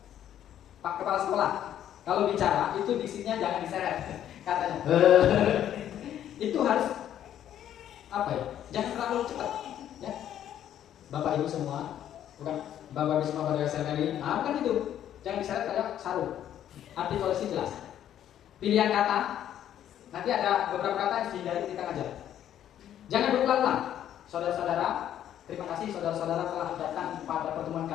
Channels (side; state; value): right; quieter; 10.8 dB